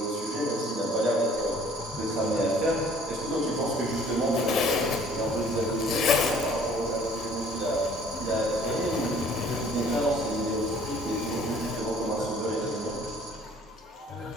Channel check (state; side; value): normal; both; correlation 0.55